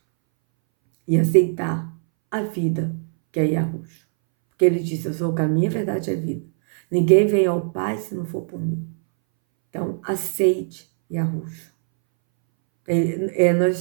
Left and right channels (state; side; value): silent; left; 62 dB below the other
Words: E aceitar a vida que é Yahushua. Porque ele disse, eu sou o caminho, a verdade e a vida. Ninguém vem ao Pai se não for por mim. Então, aceite Yahushua. Nós